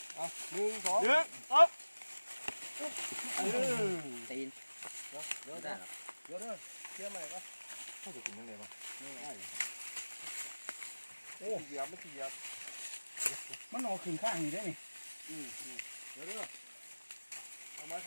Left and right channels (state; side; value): inverted; both; correlation -1.00